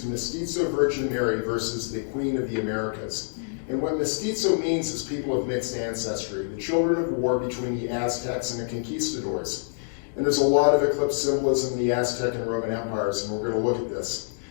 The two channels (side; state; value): right; silent; digital silence